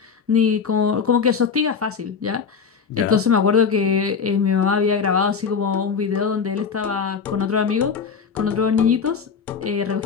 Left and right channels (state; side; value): quieter; right; 6.0 dB